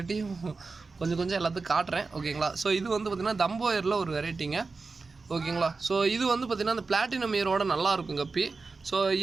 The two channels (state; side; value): quieter; left; 4.2 dB